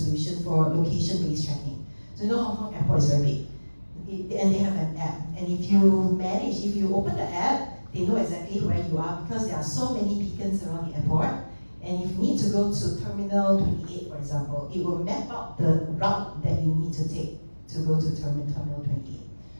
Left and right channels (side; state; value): both; inverted; correlation -1.00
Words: for location-based tracking. So you know Hong Kong Airport is very big, and they have an app. And if you open the app, they know exactly where you are because there are so many beacons around the airport. And if you need to go to Terminal 28, for example, it will map out the route that you need to take to go to Terminal 28.